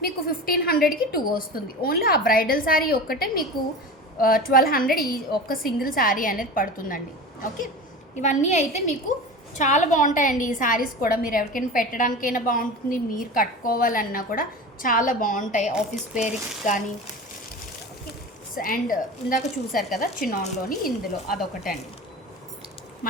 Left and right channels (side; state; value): both; normal; correlation 0.32